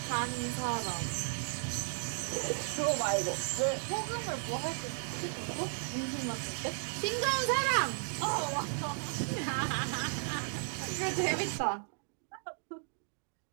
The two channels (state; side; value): silent; left; 55 dB below the other